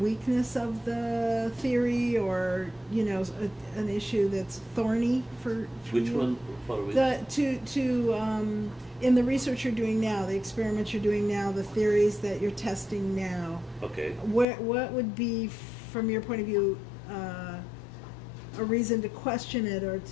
of the theory, or an issue that's thorny for Which you? one for which? In the research you're doing now, the experiments you're doing now, the theories that you're testing now. Okay. What would be, from your point of view, a reason to question it, or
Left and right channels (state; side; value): drops out; right; at 14.5 s